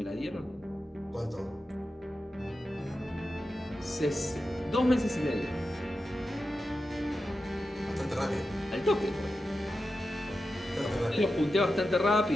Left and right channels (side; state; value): both; normal; correlation 0.91